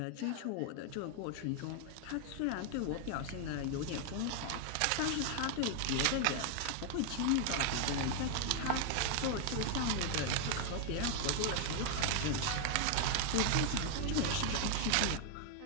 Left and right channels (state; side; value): different; both; correlation 0.00